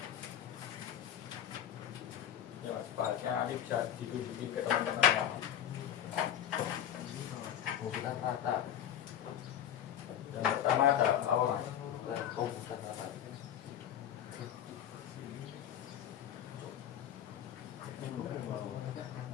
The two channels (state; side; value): quieter; right; 10.2 dB